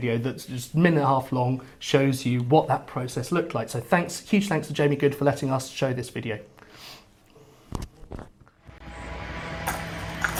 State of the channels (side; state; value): both; identical; correlation 1.00